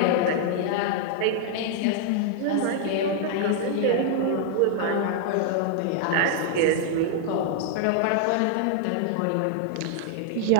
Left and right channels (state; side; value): different; both; correlation 0.00